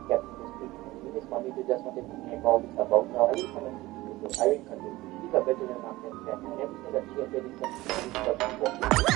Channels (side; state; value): left; quieter; 18.7 dB